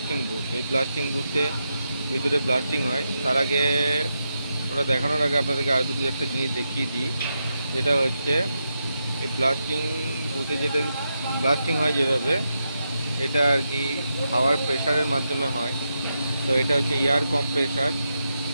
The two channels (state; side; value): inverted; both; correlation -0.85